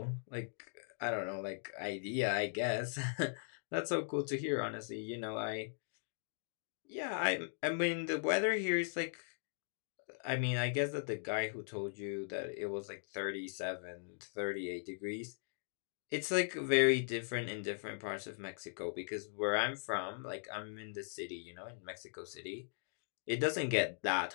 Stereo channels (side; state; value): right; silent; digital silence